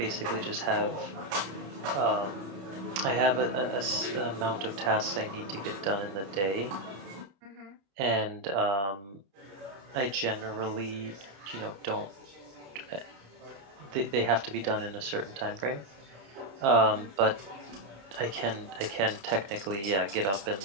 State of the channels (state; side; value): late; left; 30 ms